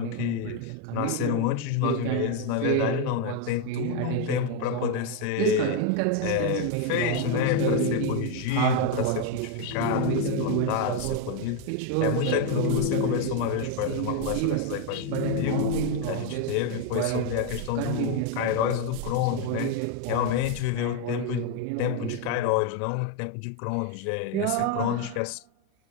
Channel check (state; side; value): different; both; correlation 0.01